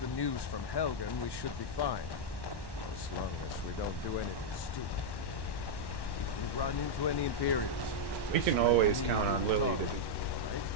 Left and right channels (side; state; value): right; late; 1.1 ms